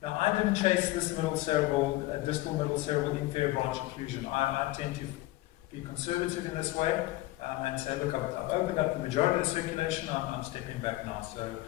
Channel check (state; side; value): quieter; right; 18.0 dB